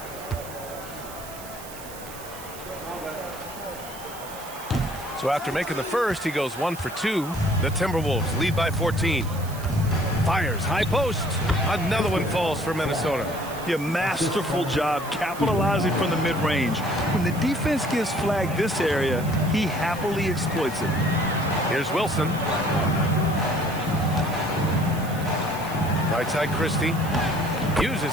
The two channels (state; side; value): noise; right; hiss, 15 dB below the sound